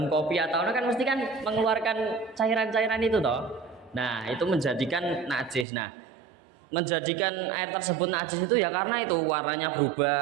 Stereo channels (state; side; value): drops out; left; at 5.7 s